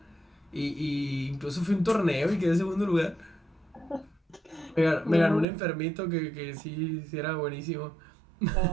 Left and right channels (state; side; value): drops out; left; at 5.5 s